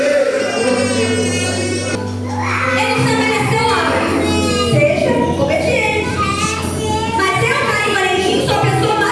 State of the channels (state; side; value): identical; both; correlation 1.00